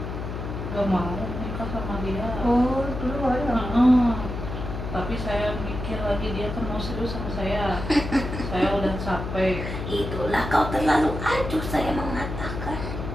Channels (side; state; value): left; noise; hum, 6 dB below the sound